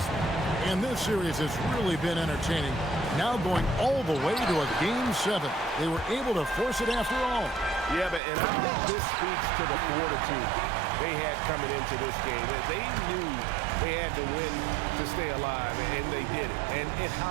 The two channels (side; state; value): left; drops out; at 8.2 s